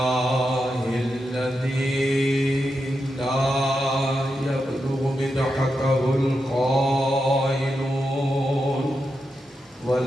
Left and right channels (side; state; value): both; normal; correlation 0.87